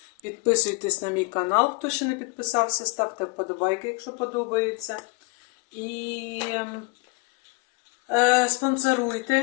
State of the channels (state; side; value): quieter; right; 26.7 dB